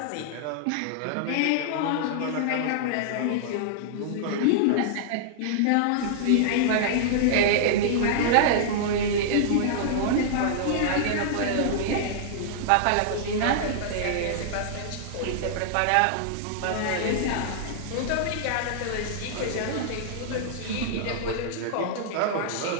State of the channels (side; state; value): both; different; correlation -0.01